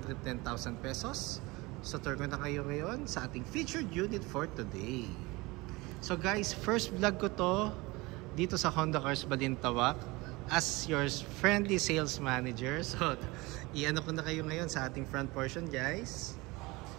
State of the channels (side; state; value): left; quieter; 23.1 dB